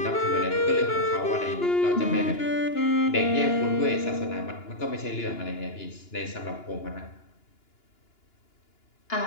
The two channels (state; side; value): late; right; 2.9 ms